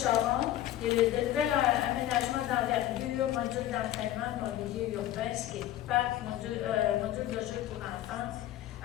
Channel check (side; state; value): right; quieter; 13.2 dB